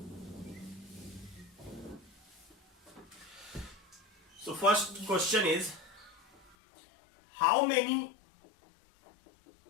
So first question is how many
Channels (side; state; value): right; drops out; at 6.6 s